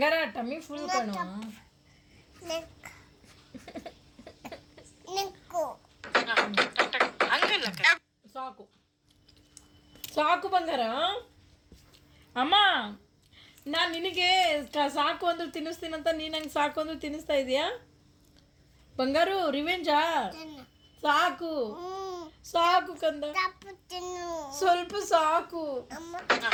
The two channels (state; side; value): identical; both; correlation 1.00